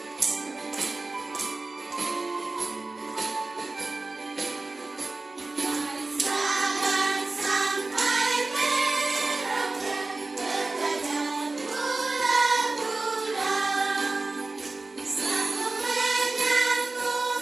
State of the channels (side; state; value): left; quieter; 3.4 dB